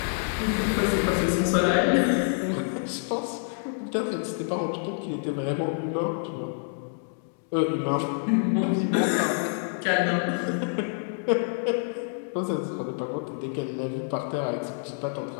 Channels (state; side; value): silent; right; 60 dB below the other